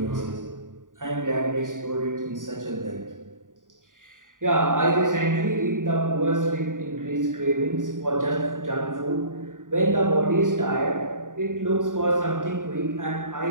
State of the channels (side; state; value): left; late; 0.88 ms